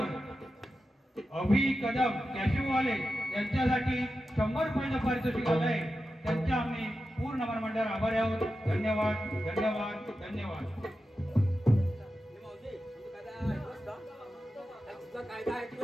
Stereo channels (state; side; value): normal; both; correlation 0.91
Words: अभि कदम कॅशिववाले यांच्यासाठी 100 रुपयाचं पारितोषिक आलंय. त्यांच्या आम्ही पूर्ण मंडळावर आभारी आहोत. धन्यवाद धन्यवाद धन्यवाद. तुझा कायदा